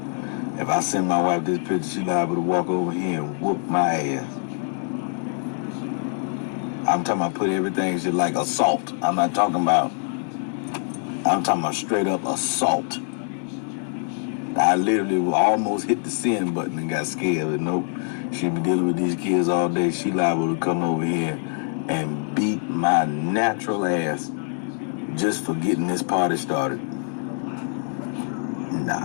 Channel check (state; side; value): silent; right; 60 dB below the other